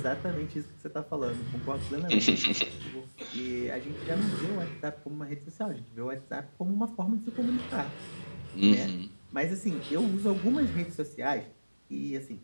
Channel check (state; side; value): inverted; both; correlation -1.00